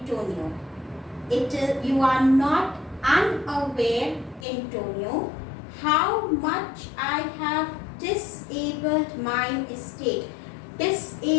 You are not unaware, Antonio, how much I have disabled my estate.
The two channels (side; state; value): right; drops out; at 4.5 s